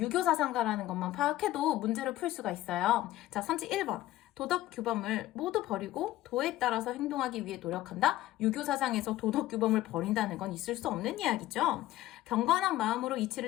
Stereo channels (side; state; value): right; quieter; 15.1 dB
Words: 유교 사상가라는 것만 파악해도 문제를 풀 수가 있어요. 자, 선지 1번. 도덕 규범을 모두 버리고 도에 따라서 행동하기 위해 노력한다? 유교 사상에서 도덕 규범을 버린다는 건 있을 수 없는 이야기죠. 경건한 마음으로